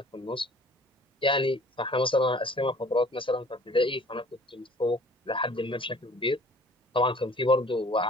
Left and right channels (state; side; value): normal; both; correlation 0.51